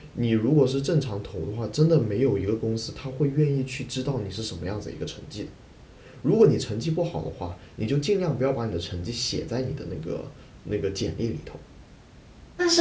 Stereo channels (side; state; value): both; identical; correlation 1.00